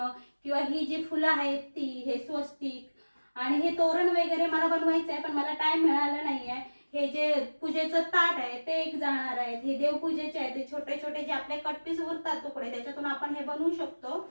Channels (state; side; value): inverted; both; correlation -1.00